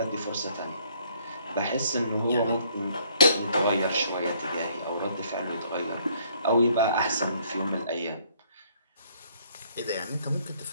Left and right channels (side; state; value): both; inverted; correlation -0.63